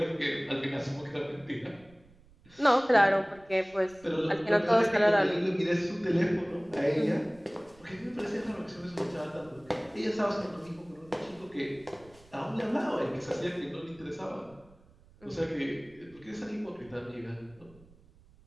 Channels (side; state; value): right; noise; rumble, 27 dB below the sound